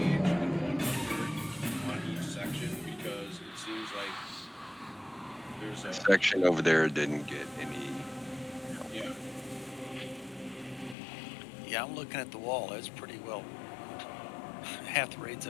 and one hunter on each section because it seems like there's a Section over there didn't get any. yeah. Yeah, I'm looking at the wall. It's pretty well. Half the raids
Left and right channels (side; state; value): right; drops out; at 11.0 s